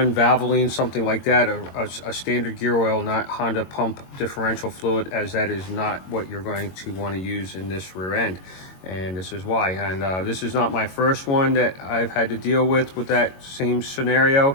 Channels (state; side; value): late; right; 22 ms